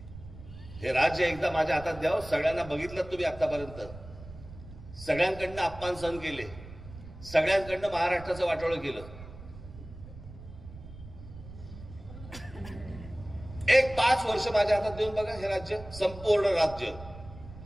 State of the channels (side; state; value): right; noise; rumble, 15 dB below the sound